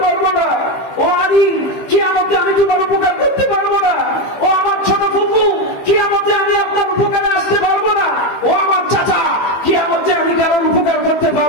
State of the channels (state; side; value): late; right; 15 ms